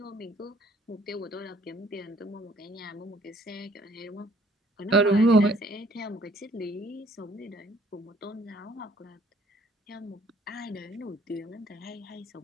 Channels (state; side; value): normal; both; correlation 0.60